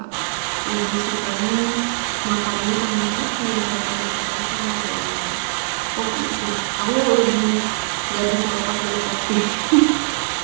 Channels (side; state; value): left; silent; digital silence